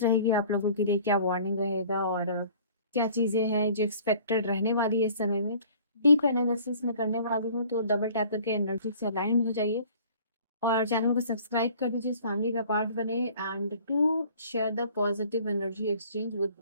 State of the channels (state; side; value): inverted; both; correlation -0.51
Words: रहेगी आप लोगों के लिए, क्या वार्निंग रहेगा और क्या चीजें हैं जो एक्सपेक्टेड रहने वाली है इस समय में। डीप एनालिसिस में करने वाली हूँ तो डबल टैप करके एनर्जी से अलाइन हो जाइए और चैनल को सब्सक्राइब कर दीजिए, इस फैमिली का पार्ट बने and to share the positive energy exchange with